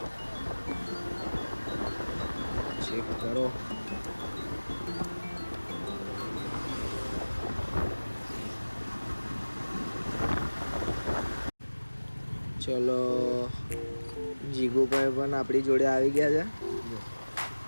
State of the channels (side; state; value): both; inverted; correlation -1.00